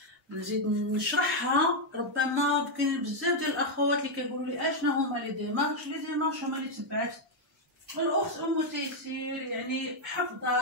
نزيد نشرحها، ربما كاين بزاف ديال الاخوات اللي كيقولوا لي اشنا هما لي ديمارش هما اللي تبعات الاخت ام تيسير، يعني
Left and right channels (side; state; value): both; normal; correlation 0.01